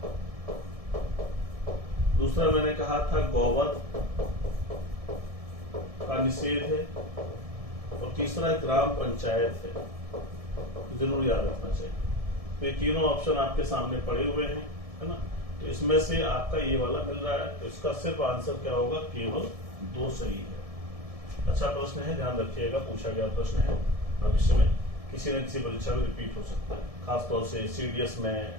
दूसरा मैंने कहा था गौवध का निषेध है, और तीसरा ग्राम पंचायत है। जरूर याद रखना चाहिए। तो ये तीनों ऑप्शन आपके सामने पड़े हुए हैं, है ना? तो इसमें से आपका ये वाला मिल रहा है, तो इसका सिर्फ आंसर क्या होगा? केवल 2 सही है। अच्छा प्रश्न है, ध्यान रखिएगा, पूछा गया प्रश्न है। भविष्य में किसी न किसी परीक्षा में रिपीट हो सकता है, खासतौर से सीडीएस में,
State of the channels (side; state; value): left; late; 1.7 ms